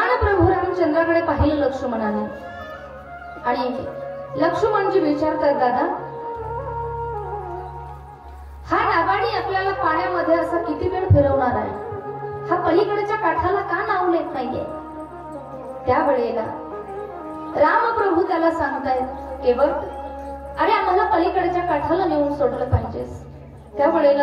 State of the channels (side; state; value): both; identical; correlation 1.00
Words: प्रभू रामचंद्राकडे पाहिलं लक्ष्मणाने आणि लक्ष्मणजी विचारतात, दादा हा नावाडी आपल्याला पाण्यामध्ये असा किती वेळ फिरवणार आहे, हा पलीकडच्या काठाला का नाव लेत नाहीये? त्या वेळेला रामप्रभू त्याला सांगतायत, केवळ अरे आम्हाला पलीकडच्या काठाला नेऊन सोडलं पाहिजेस. त्या